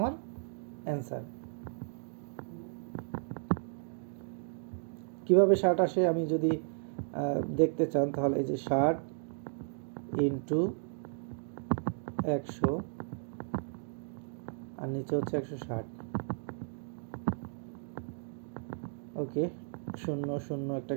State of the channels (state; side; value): silent; left; digital silence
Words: অ্যান্সার। কীভাবে 60 আসে আমি যদি দেখতে চান, তাহলে এই যে 60 ইন্টু 100 আর নিচে হচ্ছে 160, ওকে। 0 0 একটা